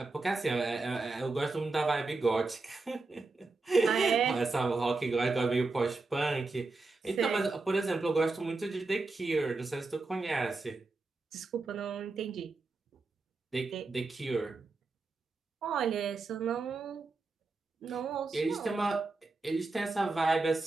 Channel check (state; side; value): quieter; left; 3.6 dB